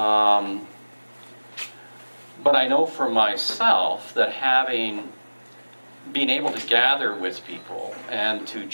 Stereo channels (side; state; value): both; inverted; correlation -1.00